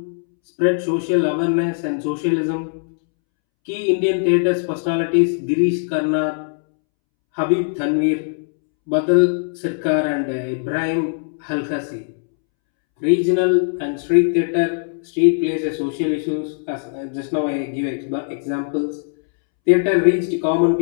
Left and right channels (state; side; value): silent; right; 66 dB below the other